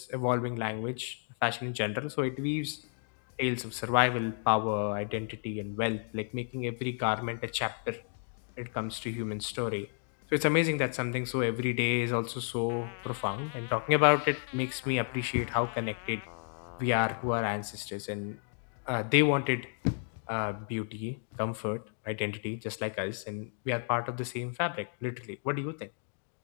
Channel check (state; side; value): silent; right; 56 dB below the other